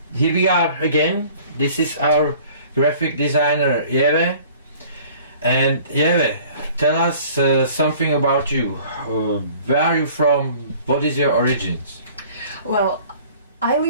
here we are again. This is our graphic designer Yeve. And Yeve, tell us something about you. Where are you from? What is your origins? Well, I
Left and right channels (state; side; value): inverted; both; correlation -0.50